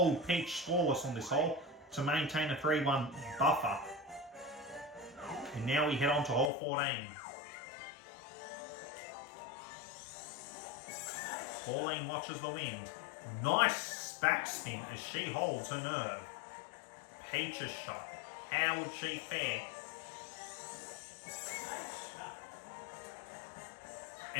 Peach scoreless on this hole to maintain a 3-1 buffer. And now we head on to hole 14. Pauline watches the wind. Nice backspin as she holds her nerve. Peach's shot. How would she fare?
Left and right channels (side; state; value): right; drops out; at 6.5 s